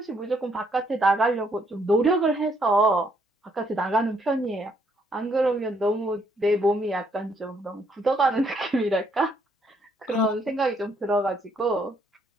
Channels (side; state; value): both; normal; correlation 0.70